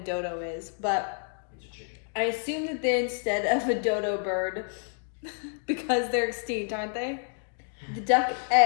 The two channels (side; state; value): right; silent; 59 dB below the other